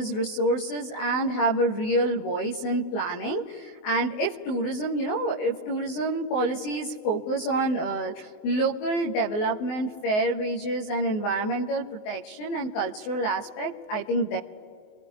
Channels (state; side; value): late; right; 24 ms